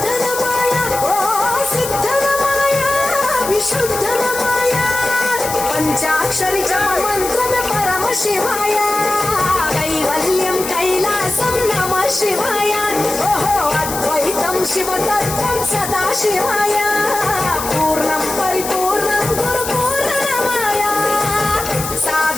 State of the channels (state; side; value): noise; left; hiss, 7 dB below the sound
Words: ఓ సిద్ధనమాయ విశుద్ధనమాయ పంచాక్షరి జప మంత్రమే పరమ శివాయ కైవల్యం కైలాసం నమ శివాయ ఓహో అద్వైతం శివతత్వం సదా శివాయ పూర్ణం పరిపూర్ణం